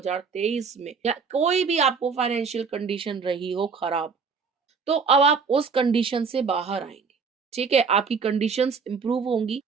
में, या कोई भी आपको फाइनेंशियल कंडीशन रही हो खराब, तो अब आप उस कंडीशन से बाहर आएंगे। ठीक है, आपकी कंडीशंस इंप्रूव होंगी,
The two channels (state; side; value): quieter; left; 5.5 dB